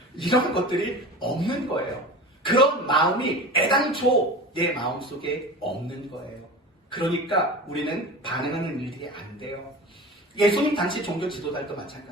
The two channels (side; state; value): both; normal; correlation 0.33